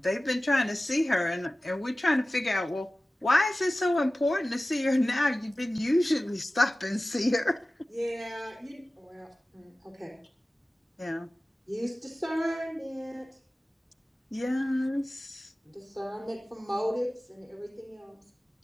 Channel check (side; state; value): both; normal; correlation 0.96